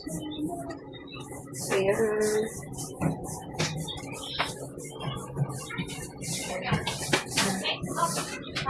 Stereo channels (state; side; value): identical; both; correlation 1.00